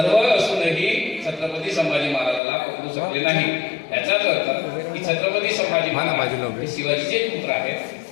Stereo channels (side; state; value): right; drops out; at 2.4 s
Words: असूनही छत्रपती संभाजी महाराजाला पकडू शकले नाही. याचाच अर्थ की छत्रपती संभाजी महाराज शिवाजीचे पुत्र